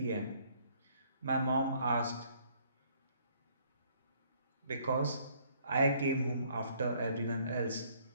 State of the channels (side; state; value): both; inverted; correlation -0.63